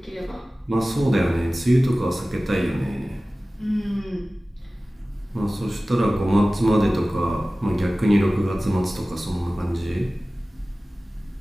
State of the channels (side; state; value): both; normal; correlation 0.97